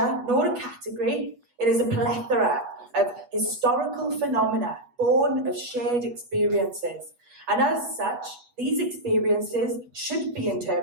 nor a category. It is a plethora of historical phenomena born of shared experiences. And as such, these experiences should be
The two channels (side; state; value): left; late; 8.0 ms